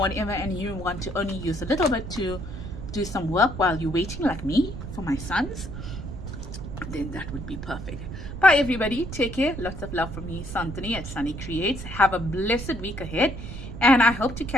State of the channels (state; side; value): noise; right; rumble, 9 dB below the sound